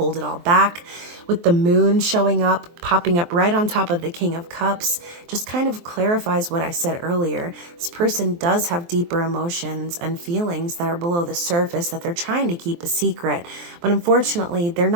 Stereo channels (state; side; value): late; left; 23 ms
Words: it all back. With the moon showing up, popping up right on top of the King of Cups, just kind of clarifies what I said earlier. This person does have deeper emotions and feelings that are below the surface that they're trying to keep a secret. But unfortunately, they're